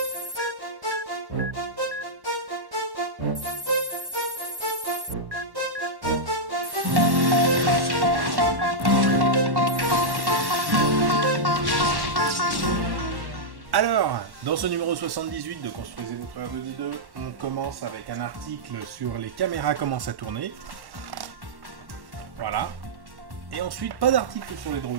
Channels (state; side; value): late; left; 1.1 ms